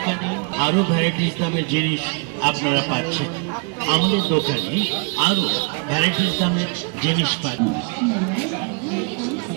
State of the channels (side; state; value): left; quieter; 32.8 dB